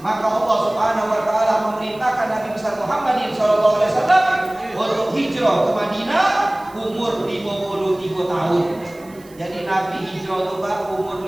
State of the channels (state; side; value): noise; right; hiss, 26 dB below the sound